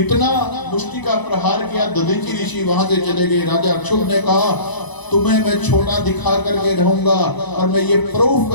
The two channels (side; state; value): right; late; 1.0 ms